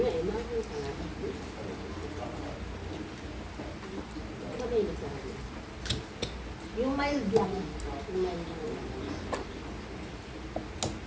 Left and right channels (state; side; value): identical; both; correlation 1.00